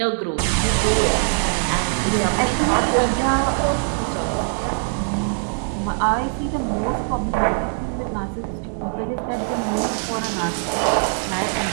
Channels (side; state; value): left; silent; 64 dB below the other